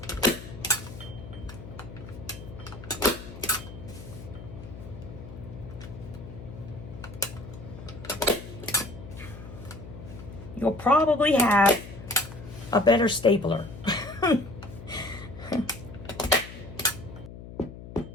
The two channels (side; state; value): left; noise; hum, 13 dB below the sound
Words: You'll probably have a better stapler.